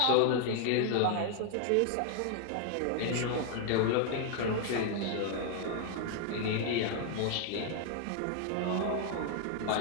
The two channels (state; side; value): different; both; correlation 0.00